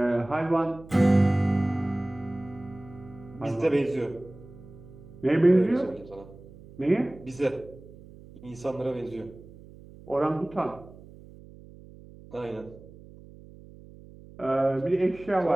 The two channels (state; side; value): noise; right; hum, 20 dB below the sound